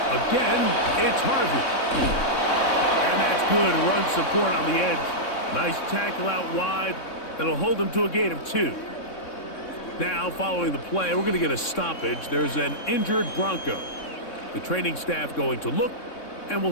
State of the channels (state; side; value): late; right; 3.6 ms